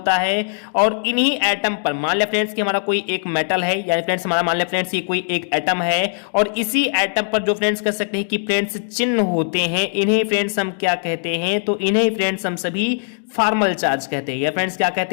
है। और इन्हीं एटम पर मान लिया फ्रेंड्स कि हमारा कोई एक मेटल है या फ्रेंड्स हमारा मान लिया फ्रेंड्स ये कोई एक एटम है और इसी एटम पर जो फ्रेंड्स कह सकते हैं कि फ्रेंड्स चिन्ह होते हैं, इन्हें फ्रेंड्स हम क्या कहते हैं, तो इन्हें फ्रेंड्स हम सभी फार्मल चार्ज कहते हैं। या फ्रेंड्स क्या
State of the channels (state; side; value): silent; right; 66 dB below the other